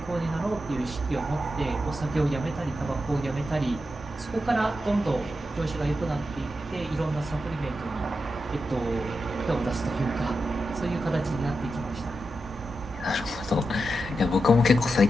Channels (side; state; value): both; normal; correlation 0.88